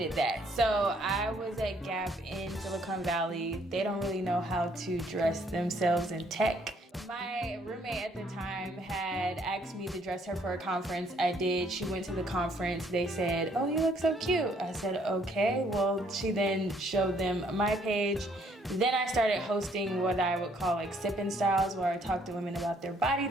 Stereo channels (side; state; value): both; normal; correlation 0.65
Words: that. So I was at Gap in Silicon Valley. They don't really know how to dress themselves in tech. My roommate at the time had asked me to dress her for a conference. I did. She went to the conference. They said, "Oh, you look so cute." I said, "Okay." Well, she then showed them my page. Then I started hosting what I would call like sipping styles, where I talked to women about their body